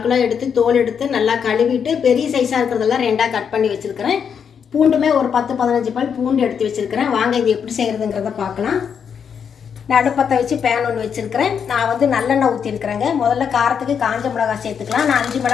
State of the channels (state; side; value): quieter; right; 7.2 dB